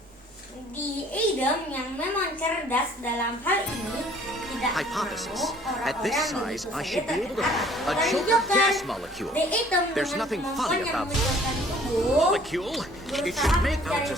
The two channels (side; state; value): both; normal; correlation 0.55